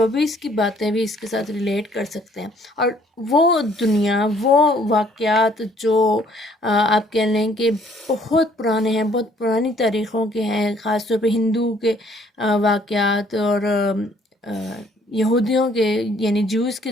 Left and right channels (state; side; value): normal; both; correlation 0.62